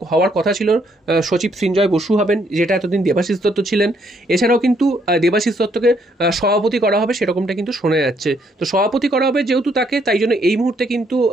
হওয়ার কথা ছিল, সচিব সৃঞ্জয় বসু হবেন, যেটা এতদিন দেবাশিস দত্ত ছিলেন। এছাড়াও কিন্তু দেবাশিস দত্তকে সভাপতি করা হবে সেরকমটা কিন্তু শোনা যাচ্ছে। তো সভাপতি করা হবে যেহেতু তাকে, তাই জন্য এই মুহূর্তে কিন্তু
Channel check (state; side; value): normal; both; correlation 0.71